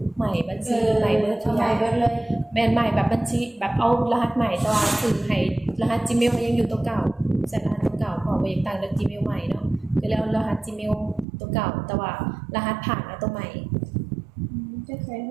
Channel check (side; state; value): left; drops out; at 11.2 s